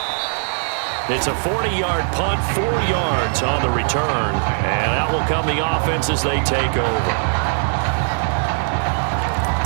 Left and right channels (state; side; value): silent; left; 63 dB below the other